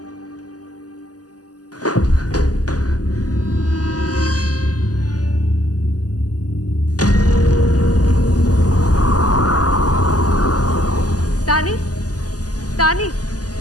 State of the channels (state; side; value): late; right; 0.67 ms